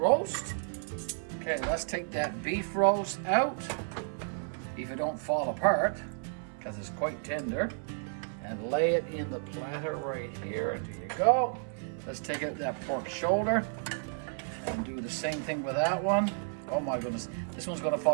Okay, let's take that beef roast out, if it don't fall apart, because it's quite tender. And lay it in the platter right here. There you go. Let's take out that pork shoulder and do the same thing with that one. Oh my goodness, this one's going to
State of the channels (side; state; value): left; silent; 56 dB below the other